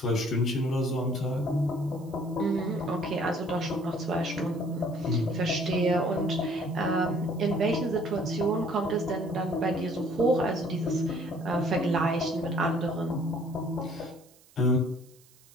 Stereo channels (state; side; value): noise; right; hiss, 28 dB below the sound